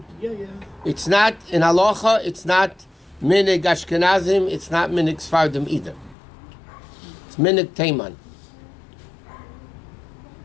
Yeah, yeah. It's not in halacha. It's not minhag Ashkenazim. It's not minhag Sfardim either. It's minhag teiman.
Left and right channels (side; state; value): right; drops out; at 6.2 s